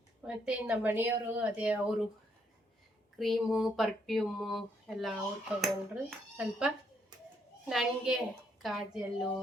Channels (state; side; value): normal; both; correlation 0.73